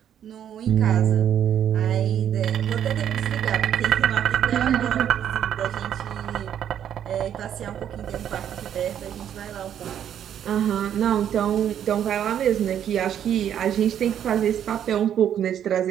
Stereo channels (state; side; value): quieter; left; 9.7 dB